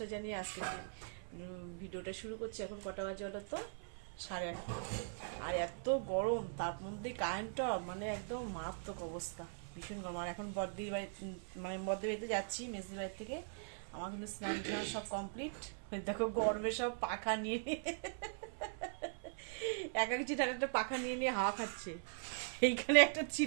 জানিয়ে আজকে ভিডিওটা শুরু করছি। এখন কটা বাজে হলো তো 8:30, আর এত গরম, তার মধ্যে কারেন্টটা মানে একদম মারাত্মক অবস্থা, ভীষণ গরম। আর এখন বদ্দির বাড়ি মানে বদ্দির বাড়িতে যাচ্ছি মেজদির বাড়ি থেকে। আমার কিন্তু স্নান টান সব কমপ্লিট। দেখো গরমে সব পাখা নিয়ে এক একটি একটা পাখা নিয়ে নিয়ে হাওয়া খাচ্ছে। এইখানে একটা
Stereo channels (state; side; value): silent; left; 51 dB below the other